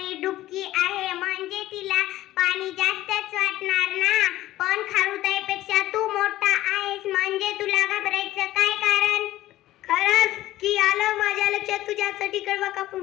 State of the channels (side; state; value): right; quieter; 15.2 dB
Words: डुबकी आहे. म्हणजे तिला पाणी जास्तच वाटणार ना. पण खारुताईपेक्षा तू मोठा आहेस, म्हणजे तुला घाबरायचं काय कारण? खरंच की आलं माझ्या लक्षात. तुझ्यासाठी कडबा